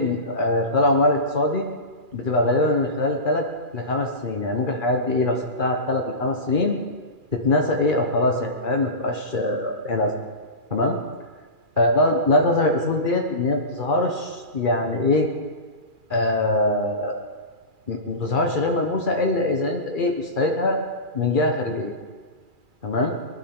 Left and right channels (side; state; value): left; late; 2.4 ms